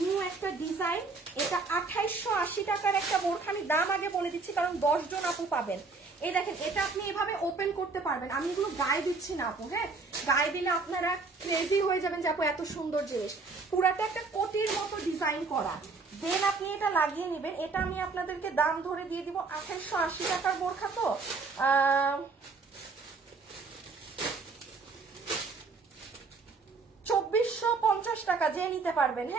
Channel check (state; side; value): quieter; left; 4.2 dB